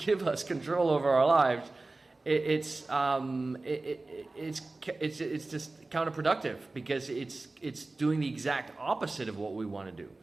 us control over our lives, it's just counterproductive, because it's doing the exact opposite of what we want to do.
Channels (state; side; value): quieter; left; 3.2 dB